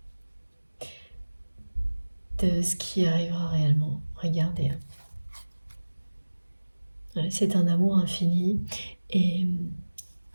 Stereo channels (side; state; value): both; inverted; correlation -1.00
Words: de ce qui arrivera réellement. Regardez. C'est un amour infini et